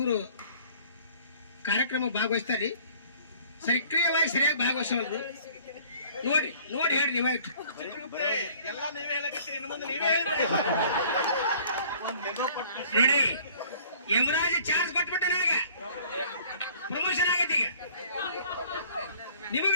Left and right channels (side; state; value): both; inverted; correlation -0.53